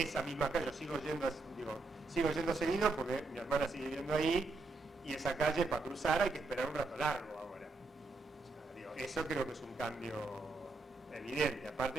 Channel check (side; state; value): left; quieter; 3.6 dB